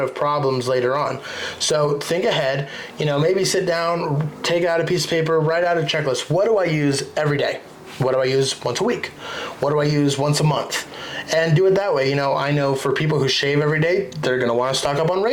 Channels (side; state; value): both; identical; correlation 1.00